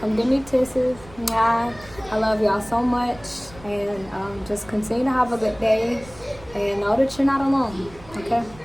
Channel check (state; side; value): noise; right; rumble, 21 dB below the sound